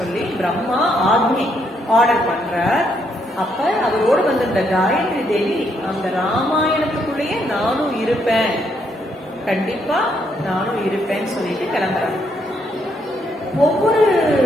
பிரம்மா ஆர்டர் பண்ற. அப்ப அவரோடு வந்திருந்த காயத்ரி தேவி அந்த ராமாயணத்துக்குள்ளேயே நானும் இருப்பேன், கண்டிப்பா நானும் இருப்பேன்னு சொல்லிட்டு கிளம்புறாங்க. ஒவ்வொரு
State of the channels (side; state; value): both; normal; correlation 0.74